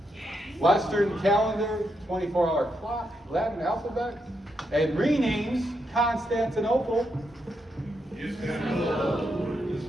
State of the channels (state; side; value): normal; both; correlation 0.81